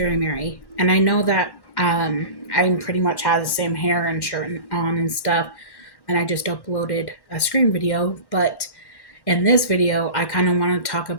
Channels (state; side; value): late; right; 1.1 ms